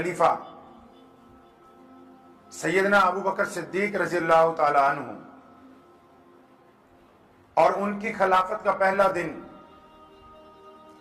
سیدنا ابو بکر صدیق رضی اللہ تعالی عنہ اور ان کی خلافت کا پہلا دن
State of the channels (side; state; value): both; identical; correlation 1.00